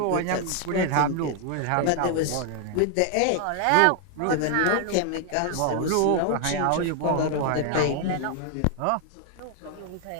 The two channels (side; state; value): both; different; correlation 0.00